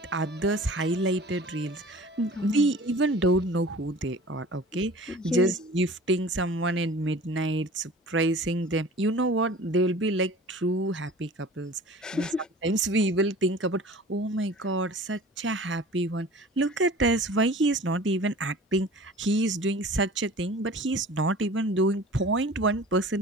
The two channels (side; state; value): both; normal; correlation 0.42